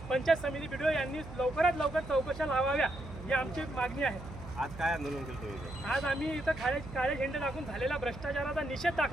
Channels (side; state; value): right; noise; hum, 13 dB below the sound